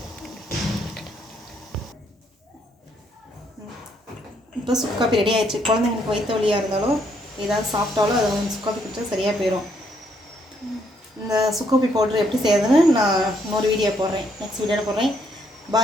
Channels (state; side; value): normal; both; correlation 0.72